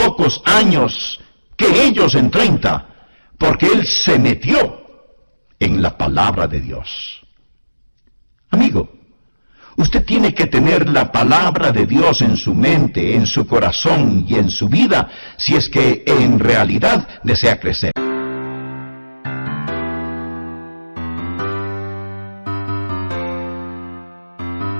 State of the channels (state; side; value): inverted; both; correlation -1.00